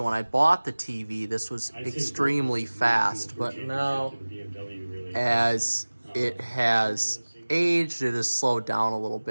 when I bought the TV, this was extremely fast, but now as it has aged, it has slowed down a little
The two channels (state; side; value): inverted; both; correlation -1.00